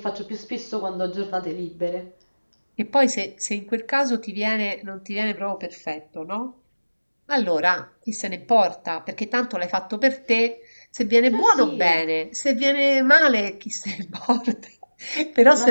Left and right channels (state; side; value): inverted; both; correlation -1.00